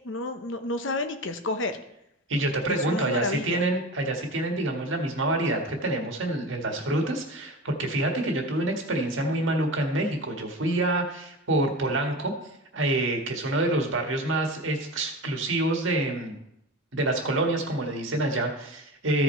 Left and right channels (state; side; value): normal; both; correlation 0.29